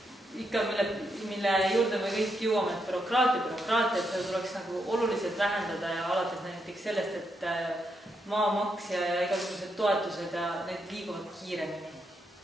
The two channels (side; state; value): both; normal; correlation 0.81